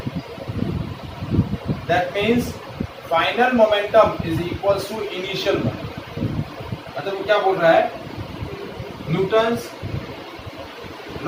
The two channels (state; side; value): identical; both; correlation 1.00